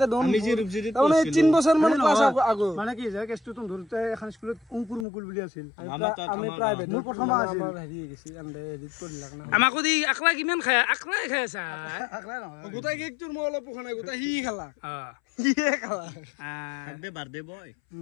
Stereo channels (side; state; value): right; drops out; at 5.1 s